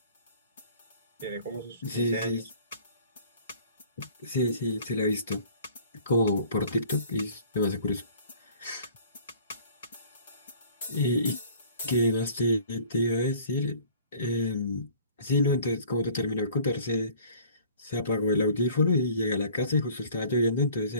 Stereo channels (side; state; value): both; inverted; correlation -0.51